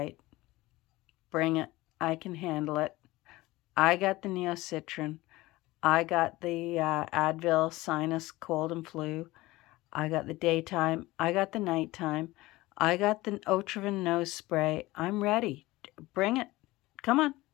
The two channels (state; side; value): quieter; right; 19.2 dB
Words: bring it. I can handle it. I got the Neocitrin. I got the Advil sinus cold and flu. I got the daytime. I got the nighttime. I got the Otriven nose spray. I'm ready. Bring it. Come on.